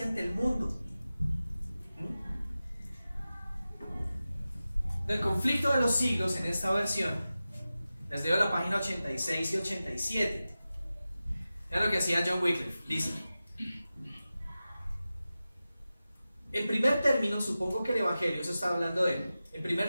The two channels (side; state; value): both; inverted; correlation -0.94